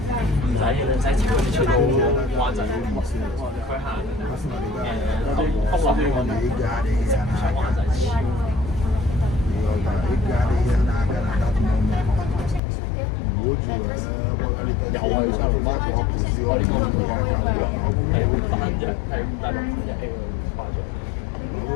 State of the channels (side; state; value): right; drops out; at 12.6 s